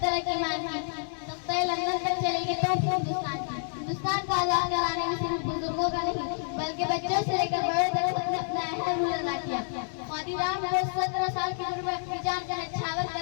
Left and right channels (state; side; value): silent; right; 58 dB below the other